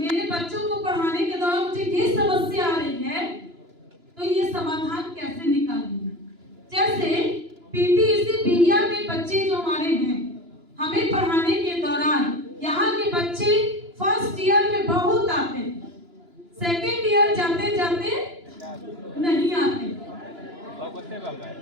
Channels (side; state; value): left; late; 2.9 ms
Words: बच्चों को पढ़ाने के दौरान मुझे ये समस्या आ रही है तो ये समाधान कैसे निकालेंगे। जैसे पीटीईसी बिहिया में बच्चे जो हमारे हैं, हमें पढ़ाने के दौरान यहाँ के बच्चे फर्स्ट ईयर में बहुत आते हैं, सेकेंड ईयर जाते जाते नहीं आते।